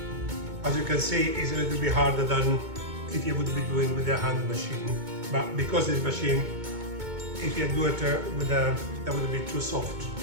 As you can see, it's a little bit harder than if you would be doing with a hand machine. But because this machine, if you do it with that would be too soft.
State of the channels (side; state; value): left; late; 2.2 ms